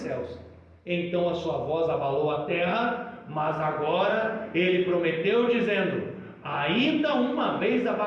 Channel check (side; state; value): both; identical; correlation 1.00